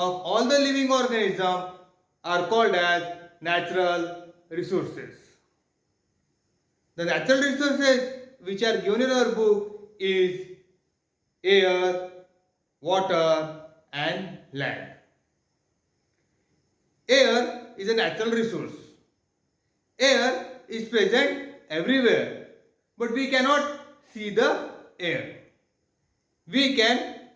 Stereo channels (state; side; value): identical; both; correlation 1.00